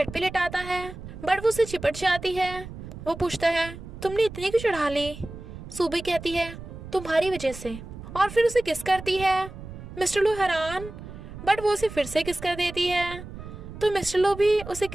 पे लेटाता है, बट वो उसे चिपट जाती है। वो पूछता है, तुमने इतनी क्यों चढ़ा ली? सूबी कहती है, तुम्हारी वजह से, और फिर उसे किस करती है। मिस्टर लू हैरान, बट वो उसे फिर से किस कर देती है। तो मिस्टर लू भी उसे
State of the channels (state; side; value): noise; right; rumble, 13 dB below the sound